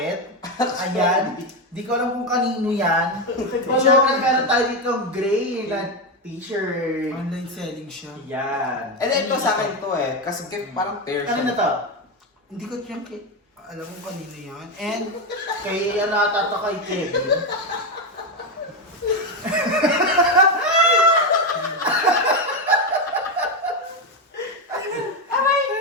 Ayan. Di ko alam kung kanino yan. Siyempre, meron tayo dito gray na t-shirt. Online selling siya. Yan. And then ito sa akin to kasi parang pair siya. Kanino to? Hindi ko tiyan alam mo kanino yan. And Kay ano ata to kay Kevin.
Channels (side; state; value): both; normal; correlation 0.11